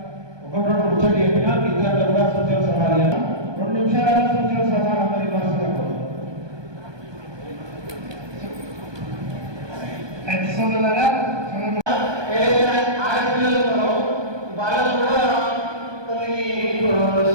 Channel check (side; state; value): left; late; 1.2 ms